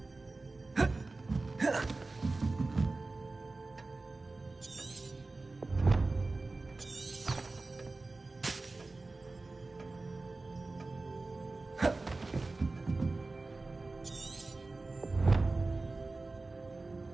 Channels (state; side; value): quieter; left; 3.4 dB